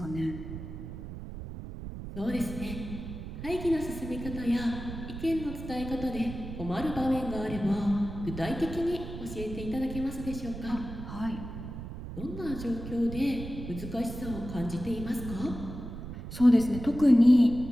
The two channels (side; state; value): right; noise; rumble, 9 dB below the sound